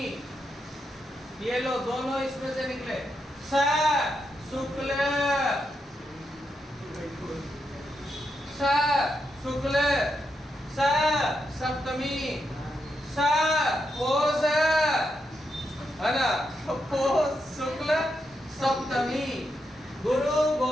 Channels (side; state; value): both; normal; correlation 0.83